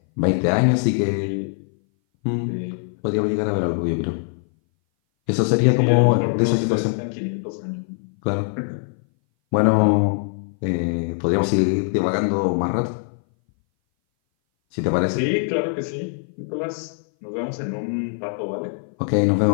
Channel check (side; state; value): right; silent; 59 dB below the other